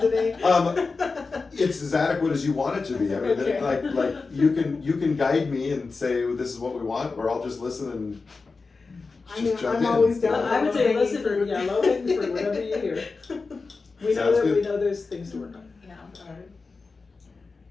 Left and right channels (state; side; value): quieter; right; 4.2 dB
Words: today? It's as adequate as you want it to be. I mean, Okay. like you can guide me and say, well, this is what we want, or I'll just listen and just jump I'm in. always down. I would say for listen, low-hanging yeah, low hanging fruit, whatever you hear. We know Sounds that, we good. know there's things to work on. Yeah. Alright.